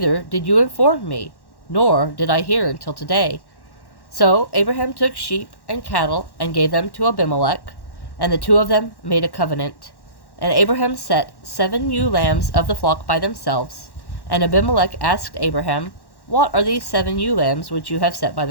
did you inform me, nor did I hear until today. So Abraham took sheep and cattle and gave them to Abimelek, and the two of them made a covenant. And Abraham set 7 ewe lambs of the flock by themselves. And Abimelek asked Abraham, What are these 7 ewe lambs which you have set by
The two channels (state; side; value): late; right; 1.1 ms